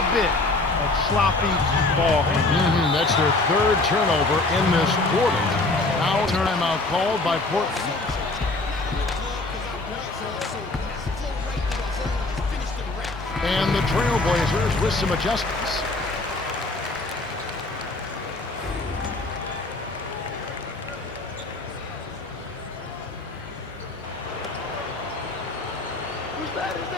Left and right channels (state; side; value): quieter; right; 3.1 dB